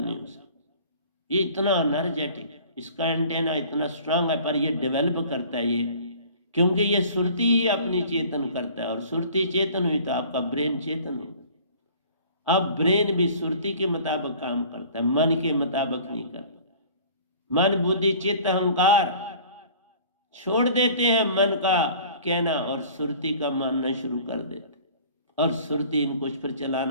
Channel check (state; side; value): inverted; both; correlation -0.48